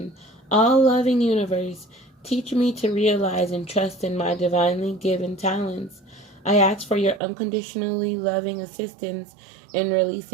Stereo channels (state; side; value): drops out; left; at 7.2 s